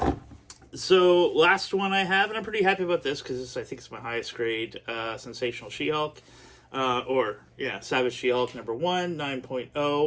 So, last one I have, and I'm pretty happy about this, because I think it's my highest grade, Sensational She-Hulk, Savage She-Hulk number 1,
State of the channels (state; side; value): identical; both; correlation 1.00